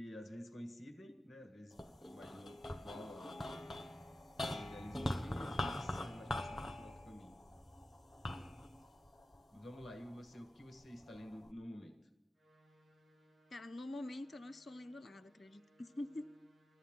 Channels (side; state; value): both; normal; correlation 0.93